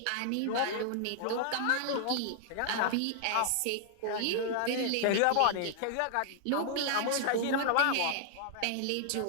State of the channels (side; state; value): both; different; correlation -0.01